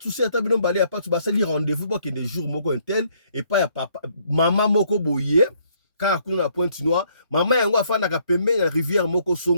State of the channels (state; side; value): inverted; both; correlation -0.67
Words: souci, atabino balé, a pas de souci, rendez-vous pour qu'il y ait des jours moko un tel, et pas ya papa, maman moko boye, car à la pointe noire, maman yango a fait na pembe, la rivière moko